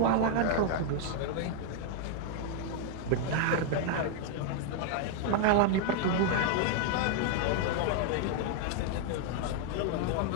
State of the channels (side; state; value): both; different; correlation 0.00